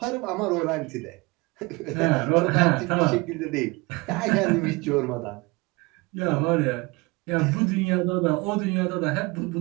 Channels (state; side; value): quieter; left; 25.0 dB